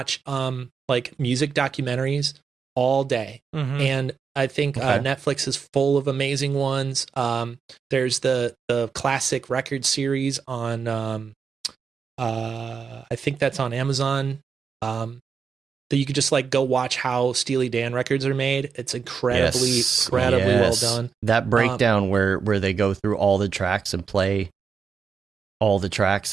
like music documentaries all day, and I think Netflix is full of amazing ones. There's the classic record series on. I think that's on Amazon. That you could just like go watch how Steely Dan records are made. It's incredibly well done. That breakdown where they go through all the tracks and play all the tracks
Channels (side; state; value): left; quieter; 6.0 dB